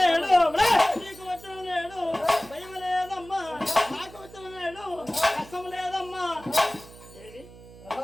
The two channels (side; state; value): right; noise; hum, 19 dB below the sound